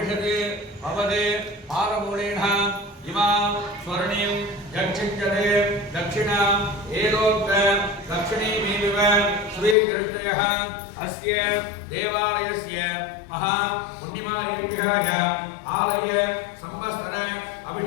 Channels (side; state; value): right; drops out; at 9.8 s